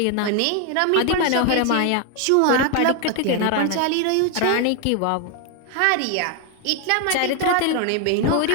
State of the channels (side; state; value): both; different; correlation 0.01